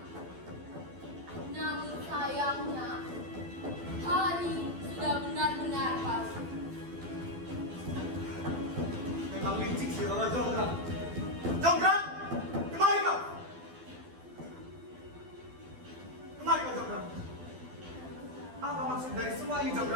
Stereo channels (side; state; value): left; late; 12 ms